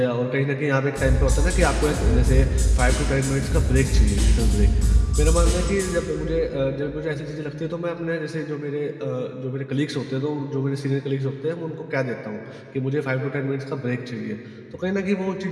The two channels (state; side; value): identical; both; correlation 1.00